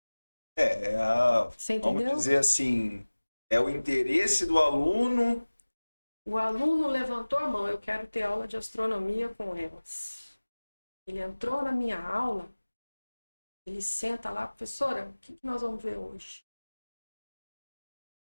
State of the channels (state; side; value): inverted; both; correlation -1.00